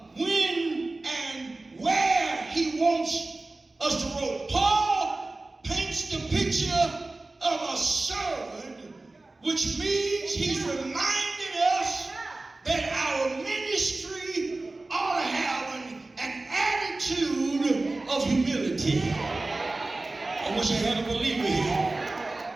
when and where he wants us to roll. Paul paints the picture of a servant, which means he's reminded us that our ministry ought to have an attitude of humility. I wish I had a believer here.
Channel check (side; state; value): left; quieter; 3.1 dB